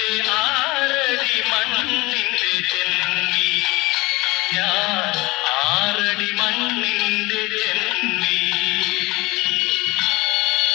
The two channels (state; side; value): quieter; right; 22.3 dB